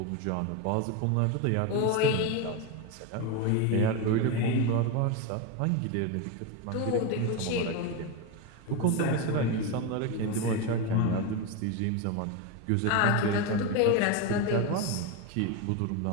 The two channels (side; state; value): both; different; correlation 0.04